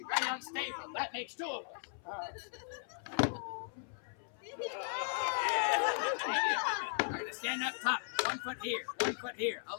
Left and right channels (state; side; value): silent; right; 53 dB below the other